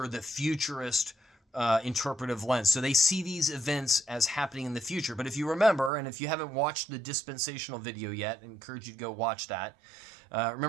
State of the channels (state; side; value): drops out; left; at 5.9 s